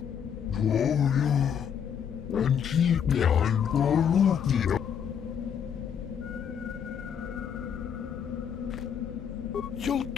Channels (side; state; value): right; quieter; 7.9 dB